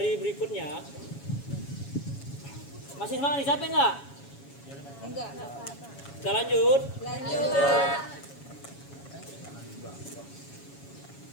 berikutnya. Masih semangat nih, capek nggak? Enggak. Kita lanjut. Lanjut.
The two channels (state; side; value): late; right; 7.2 ms